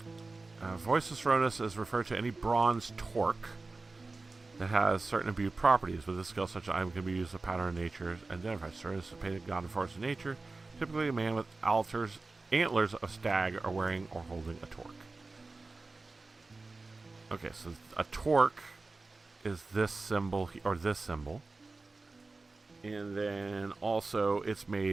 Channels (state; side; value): quieter; left; 3.6 dB